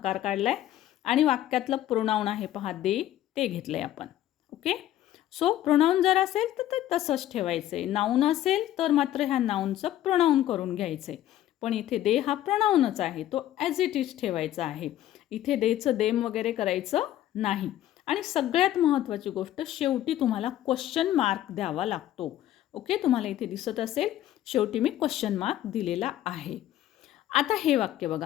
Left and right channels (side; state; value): right; quieter; 12.9 dB